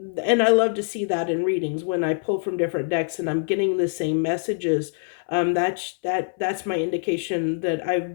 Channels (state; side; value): silent; right; 62 dB below the other